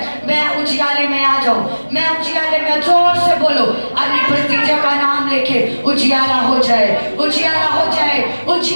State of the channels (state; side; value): inverted; both; correlation -1.00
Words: मैं उजियाले में आ जाऊं, मैं उजियाले में, जोर से बोलो अपनी परिस्थितियों का नाम लेके उजियाला हो जाए, उजियाला हो जाए,